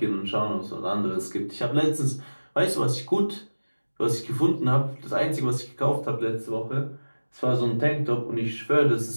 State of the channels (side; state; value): both; inverted; correlation -1.00